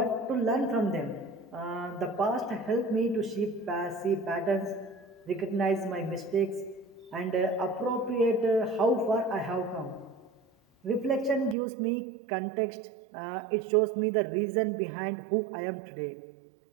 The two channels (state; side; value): drops out; left; at 11.6 s